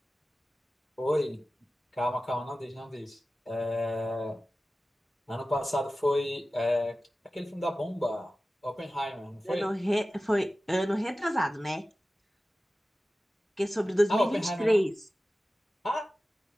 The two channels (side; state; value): both; normal; correlation 0.95